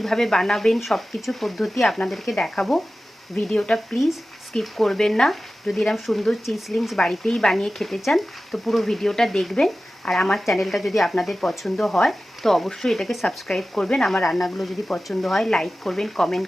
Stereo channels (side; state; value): both; normal; correlation 0.95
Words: বানাবেন সব কিছু পদ্ধতি আপনাদেরকে দেখাবো। ভিডিওটা প্লিজ স্কিপ করবেন না। যদি এরকম সুন্দর চিজ লিংকস বাড়িতেই বানিয়ে খেতে চান তো পুরো ভিডিওটা দেখবেন। আর আমার চ্যানেলটা যদি আপনাদের পছন্দ হয় তো অবশ্যই এটাকে সাবস্ক্রাইব করবেন। আমার রান্নাগুলো যদি পছন্দ হয় লাইক করবেন,